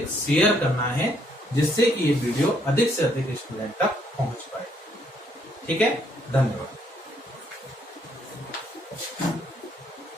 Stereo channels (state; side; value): normal; both; correlation 0.69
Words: शेयर करना है, जिससे कि ये वीडियो अधिक से अधिक स्टूडेंट तक पहुंच पाए। ठीक है? धन्यवाद।